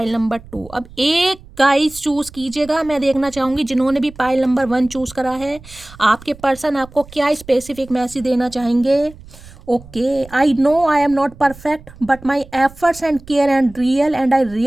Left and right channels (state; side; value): noise; right; rumble, 20 dB below the sound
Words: नंबर 2। अब एक गाइस चूज कीजिएगा, मैं देखना चाहूँगी जिन्होंने भी पाइल नंबर 1 चूज करा है, आपके पर्सन आपको क्या स्पेसिफिक मैसेज देना चाहेंगे। Okay, I know I am not perfect but my efforts and care and real and I